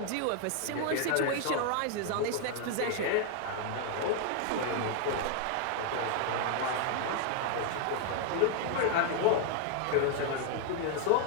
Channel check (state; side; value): different; both; correlation 0.00